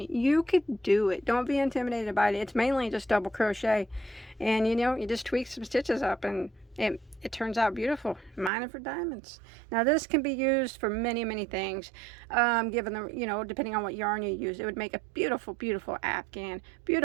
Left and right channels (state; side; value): drops out; left; at 8.5 s